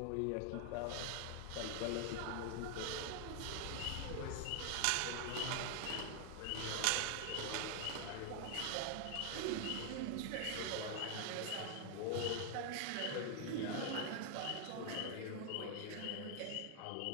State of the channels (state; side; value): different; both; correlation 0.00